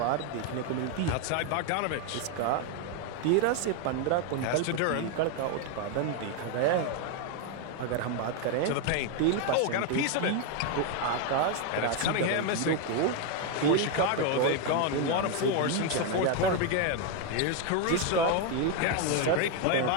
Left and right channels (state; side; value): different; both; correlation 0.01